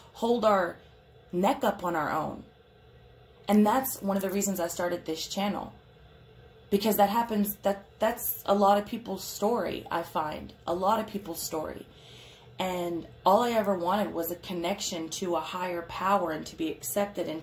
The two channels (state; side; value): identical; both; correlation 1.00